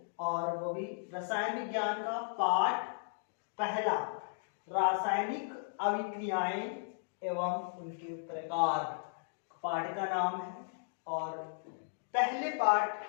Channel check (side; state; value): right; silent; digital silence